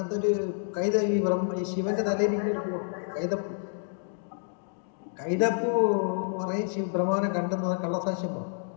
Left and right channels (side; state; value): right; silent; 59 dB below the other